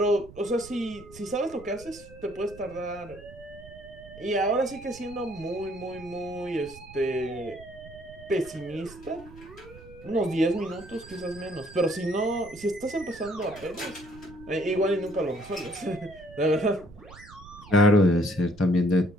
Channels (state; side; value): noise; right; rumble, 19 dB below the sound